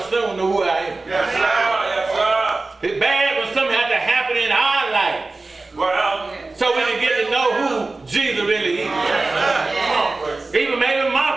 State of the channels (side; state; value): left; quieter; 3.4 dB